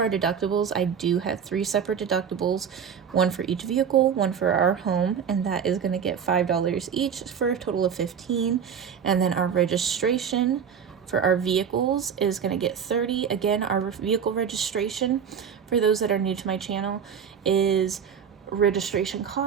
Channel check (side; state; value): left; quieter; 7.5 dB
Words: deductibles, I do have 3 separate deductibles, one for each vehicle, one for our home, and that is going to get $5 each for a total of $15. And then our registration for our vehicles is going to get $30. Again, our vehicle registration, for those that are new to my channel, is registration